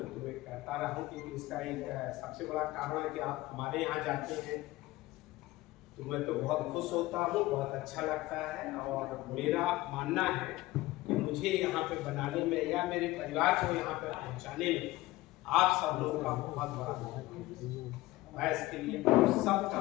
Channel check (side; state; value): right; quieter; 18.6 dB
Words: तुम्हें कहता रहा हूँ क्योंकि इसका एक सबसे बड़ा कारण है कि आप हमारे यहाँ जाते हैं तो मैं तो बहुत खुश होता हूँ, बहुत अच्छा लगता है। और मेरा मानना है कि मुझे यहाँ पे बनाने में या मेरे परिवार को यहाँ पे पहुँचाने में आप सब लोगों का बहुत बड़ा मैं इसके लिए सबका